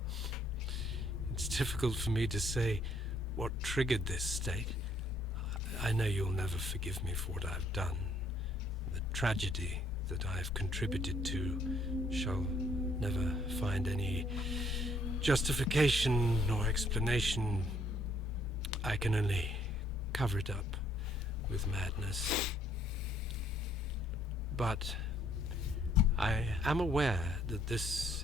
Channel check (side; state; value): both; normal; correlation 0.66